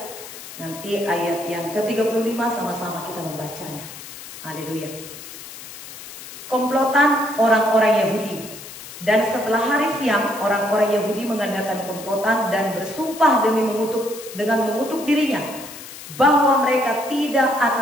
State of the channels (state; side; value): noise; left; hiss, 14 dB below the sound